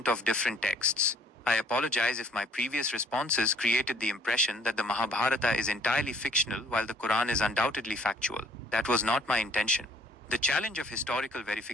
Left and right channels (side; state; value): both; normal; correlation 0.58